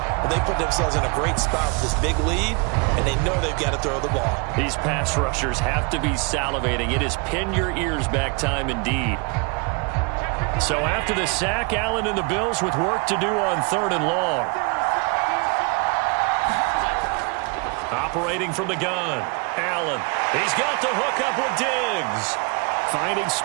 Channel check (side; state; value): left; quieter; 31.9 dB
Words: they put themselves in a great spot with this big lead, and they know they've got to throw the ball. These pass rushers have to be salivating. It is pin your ears back time indeed. So after the sack, Allen and the Bills with work to do on 3rd and long. Operating from the gun, Allen. He's got the hook up with Diggs. Finding